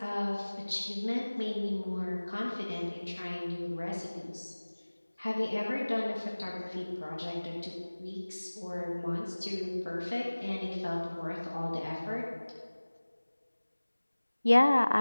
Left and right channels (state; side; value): inverted; both; correlation -1.00